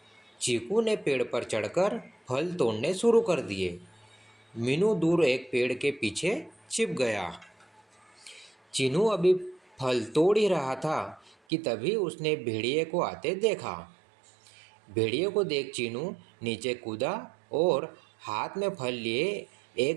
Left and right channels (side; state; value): left; drops out; at 11.4 s